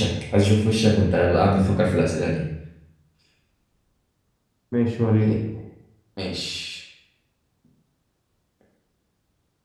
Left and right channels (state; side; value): identical; both; correlation 1.00